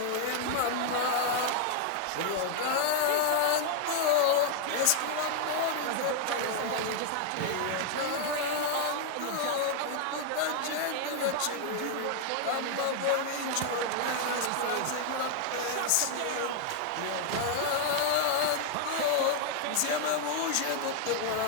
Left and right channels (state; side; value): different; both; correlation 0.00